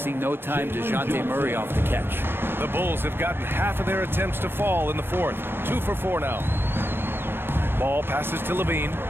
no time, DeJounte Murray off the catch. The Bulls have gotten half of their attempts to fall in the fourth. 2 for 4 now. Ball passes to Levine.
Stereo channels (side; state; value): left; late; 0.10 ms